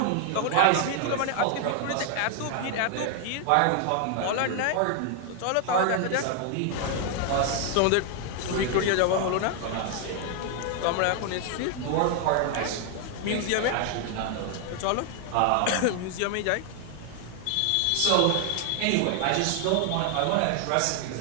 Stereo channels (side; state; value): both; different; correlation 0.00